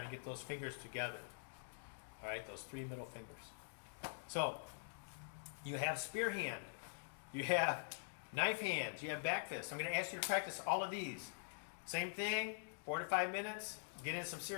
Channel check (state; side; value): silent; right; digital silence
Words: to get those fingers together, all right? Those 3 middle fingers. So you have spear hand, you have knife hands, you have back fist. I'm going to ask you to practice all of these. Same thing, 4 to 5 minutes. Get in some